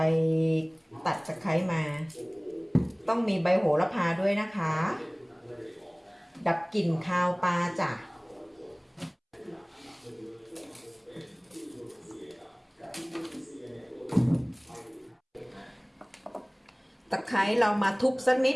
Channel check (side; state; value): both; identical; correlation 1.00